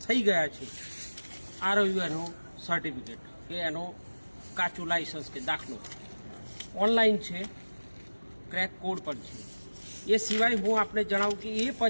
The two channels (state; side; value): inverted; both; correlation -1.00